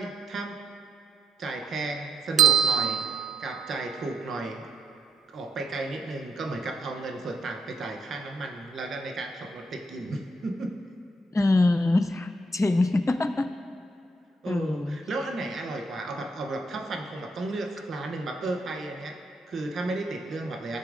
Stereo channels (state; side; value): normal; both; correlation 0.76